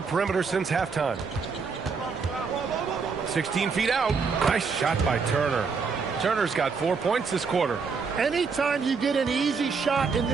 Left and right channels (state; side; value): quieter; left; 5.2 dB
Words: perimeter since halftime. 16 feet out. Nice shot by Turner. Turner's got 4 points this quarter. Anytime you get an easy shot in